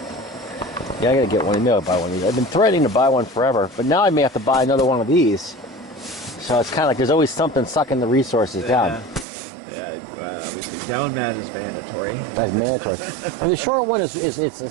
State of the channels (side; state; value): left; drops out; at 9.2 s